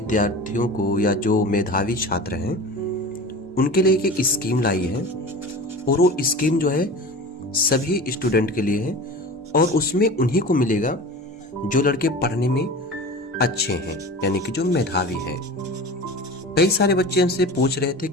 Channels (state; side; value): normal; both; correlation 0.34